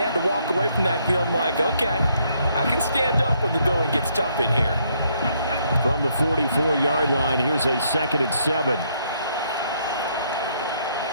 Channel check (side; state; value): both; inverted; correlation -0.71